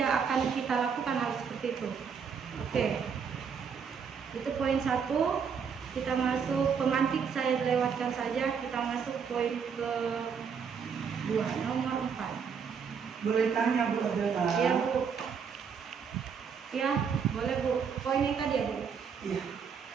akan kita lakukan hal seperti itu. Oke, itu poin 1. Kita masuk pemantik, saya lewatkan saja. Kita masuk poin ke 2, nomor 4. Boleh tanya Bu Adela? Iya Bu. Ya boleh Bu. Poin yang tadi ya Bu. Iya.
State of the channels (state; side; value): quieter; left; 6.5 dB